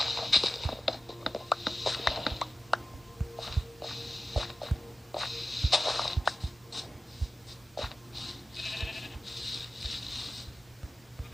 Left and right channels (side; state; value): both; normal; correlation 0.95